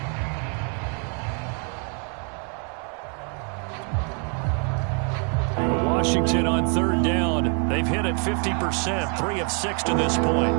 Washington on 3rd down. They've hit it 50%, 3 of 6 to this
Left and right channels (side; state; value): left; quieter; 38.9 dB